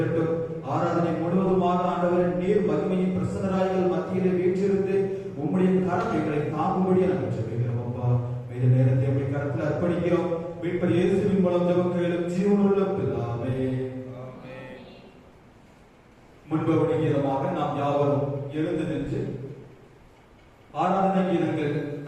ஆராதனை முழுவதுமாக ஆண்டவரை நீர் மகிமையின் பிரசன்னராய்கள் மத்தியிலே வீற்றிருந்து உம்முடைய கரம் எங்களை தாங்கும்படியே நாங்கள் ஜெபிக்கிறோம். அப்பா, மீத நேரத்தை உம்முடைய கரத்தில் அர்ப்பணிக்கிறோம். மீட்பர் இயேசுவின் மூலம் ஜெபம் கேளும் ஜீவனுள்ள பிதாவே. முன்பவனி கீதமாக நாம் யாவரும் எழுந்து நின்று ஆராதனை கீதங்கள்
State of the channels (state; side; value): identical; both; correlation 1.00